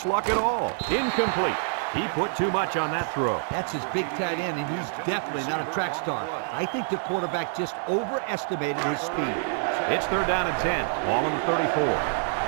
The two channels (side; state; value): left; silent; digital silence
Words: luck at all. Incomplete. He put too much on that throw. That's his big tight end, and he's definitely not a track star. I think the quarterback just overestimated his speed. It's 3rd down and 10. Ball on the 34.